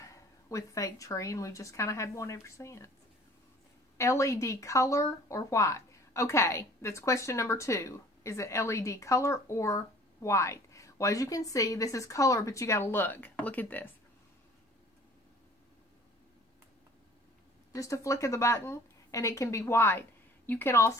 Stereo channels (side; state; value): both; normal; correlation 0.51